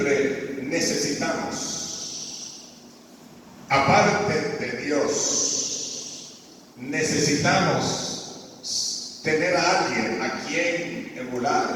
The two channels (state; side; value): identical; both; correlation 1.00